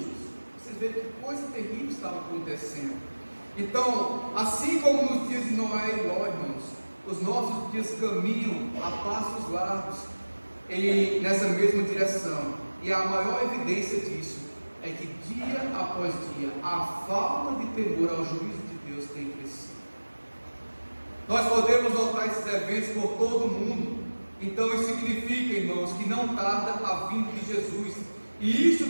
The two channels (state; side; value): inverted; both; correlation -1.00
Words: Vocês veem que coisa terrível estava acontecendo. Então, assim como nos dias de Noé e Ló, irmãos, os nossos dias caminham a passos largos nessa mesma direção. E a maior evidência disso é que dia após dia a falta de temor ao juízo de Deus tem crescido. Nós podemos notar esses eventos por todo o mundo. Então isso significa, irmãos, que não tarda a vinda de Jesus. E isso